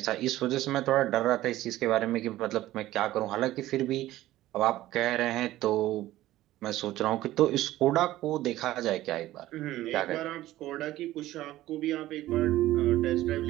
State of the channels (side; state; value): left; quieter; 15.4 dB